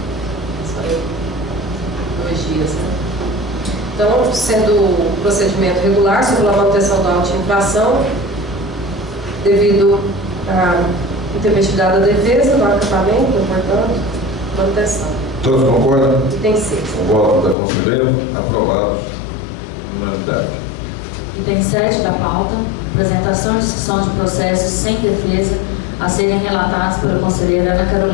Só 2 dias, né? Então, sendo o procedimento regular, sobre a manutenção da auto de infração, devido à intempestividade da defesa, do acatamento, portanto, manutenção. Todos concordam? Item 6. O voto da conselheira, aprovados por unanimidade. Item 7 da pauta, apresentação e discussão de processos sem defesa a serem relatados pela conselheira Ana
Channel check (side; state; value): right; drops out; at 17.6 s